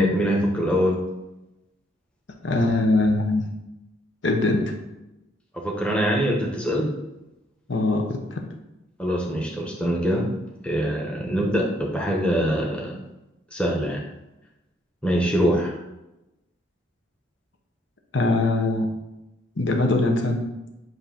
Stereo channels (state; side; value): normal; both; correlation 0.69